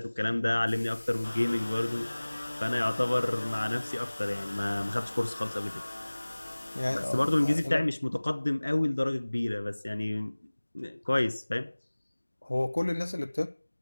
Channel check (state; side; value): inverted; both; correlation -1.00